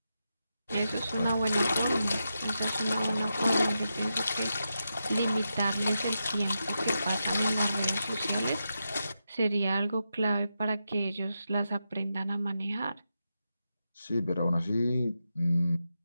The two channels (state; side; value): inverted; both; correlation -0.88